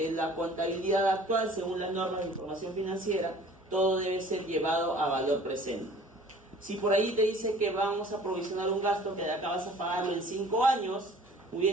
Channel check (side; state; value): both; normal; correlation 0.49